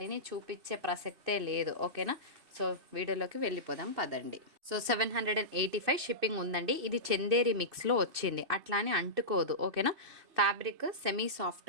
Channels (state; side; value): late; left; 2.6 ms